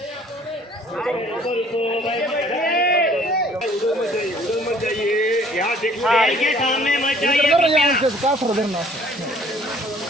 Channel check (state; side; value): normal; both; correlation 0.57